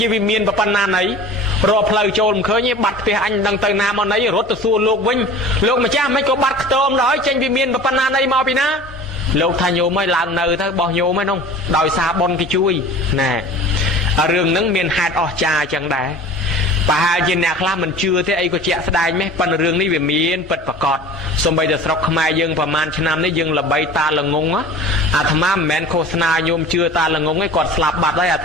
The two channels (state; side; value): normal; both; correlation 0.40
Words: ាវិមានប៉ុណ្ណាណីរកផ្លូវចូលមិនឃើញទេបាត់ផ្ទះអញមិនដឹងទៅណាមកណីរត់ទៅសួរលោកវិញលោកម្ចាស់មិនក៏បាត់ខ្ទមដល់ចេញវិមានប៉ុណ្ណាណីមកពីណាលោកថាញោមឲ្យឡើងនៅទៅបោះញោមហ្នឹងដោយសារបុណ្យគេជួយណែរឿងហ្នឹងមានហេតុអស្ចារ្យចឹងដែរប្រហែលជាអ្នកខ្លះមិនជឿទេអីក៏ជាក់ស្ដែងម៉េះប៉ុន្តែរឿងនេះវាមានពិតប្រាកដសូម្បីតែស្រុកខ្មែរយើងប្រហែលឆ្នាំនេះយើងល្បីតាល្ងងអាត្មាមិនមែនឃោសនាញោមជឿតាល្ងងទេគាត់ស្លាប់បាត់ហើយអា